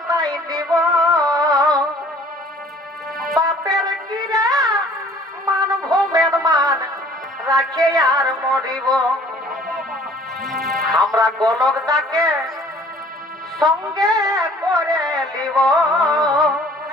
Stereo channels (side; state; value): both; normal; correlation 0.54